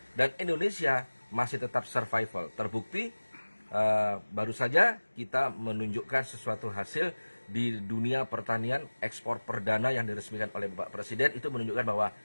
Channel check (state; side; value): inverted; both; correlation -1.00